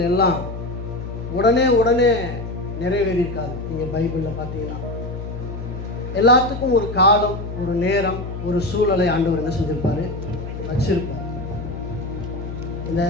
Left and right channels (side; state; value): left; noise; hum, 8 dB below the sound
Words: எல்லாம் உடனே நிறைவேறியிருக்காது. நீங்கள் பைபிளில் பார்த்தீங்கன்னா எல்லாத்துக்கும் ஒரு காலம், ஒரு நேரம், ஒரு சூழலை ஆண்டவர் என்ன செஞ்சிருப்பார், வச்சிருப்பார். இந்த